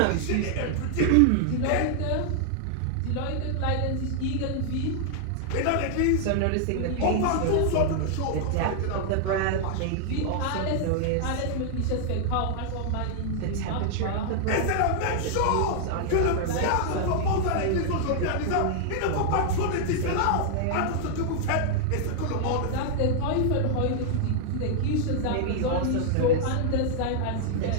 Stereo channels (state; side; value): different; both; correlation -0.01